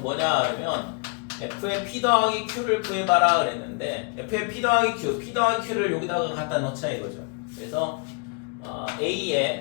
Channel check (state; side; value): quieter; right; 35.7 dB